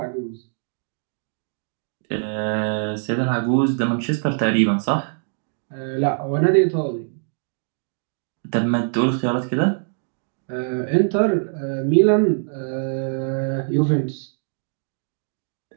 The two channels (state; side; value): silent; left; digital silence